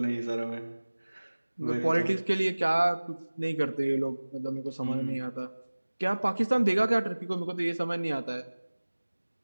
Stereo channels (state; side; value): inverted; both; correlation -1.00